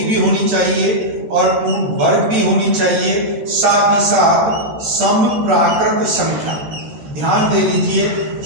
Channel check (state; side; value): late; left; 13 ms